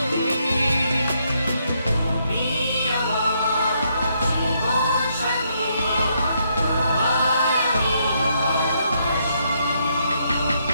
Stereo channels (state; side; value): inverted; both; correlation -0.75